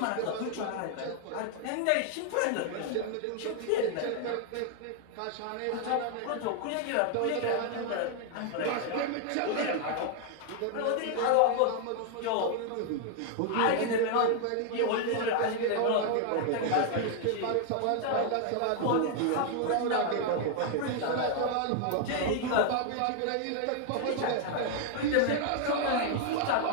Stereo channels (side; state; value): both; different; correlation 0.00